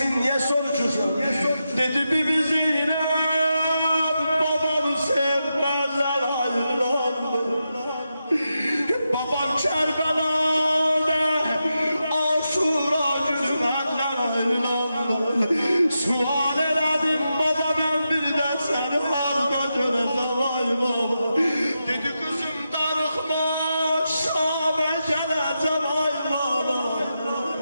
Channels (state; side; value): inverted; both; correlation -0.88